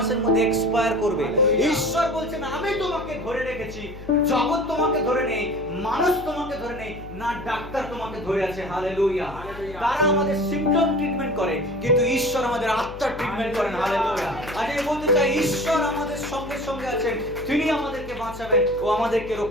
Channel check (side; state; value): left; noise; hum, 14 dB below the sound